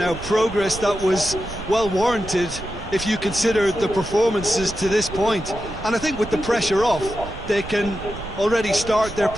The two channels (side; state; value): right; noise; rumble, 13 dB below the sound